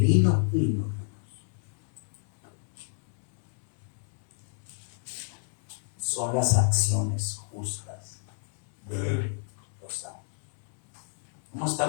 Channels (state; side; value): silent; right; digital silence